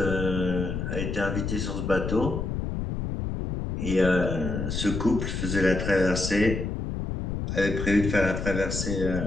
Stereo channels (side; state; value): left; noise; rumble, 3 dB below the sound